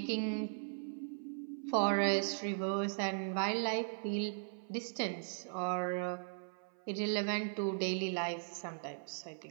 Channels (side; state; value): left; silent; 52 dB below the other